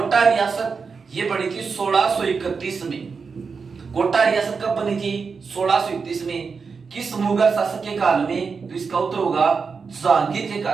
रियासत ये बनी थी 1631 में। कोटा रियासत कब बनी थी? 1631 में। किस मुगल शासक के काल में? तो इसका उत्तर होगा जहांगीर के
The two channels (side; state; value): left; quieter; 5.2 dB